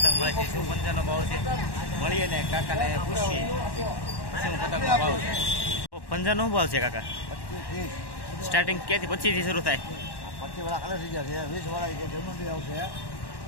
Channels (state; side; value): late; right; 1.1 ms